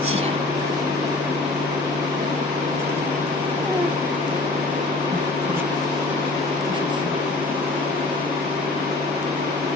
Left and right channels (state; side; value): quieter; right; 3.2 dB